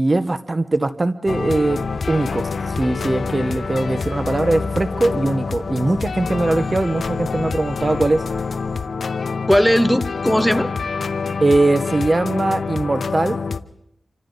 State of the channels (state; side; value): normal; both; correlation 0.95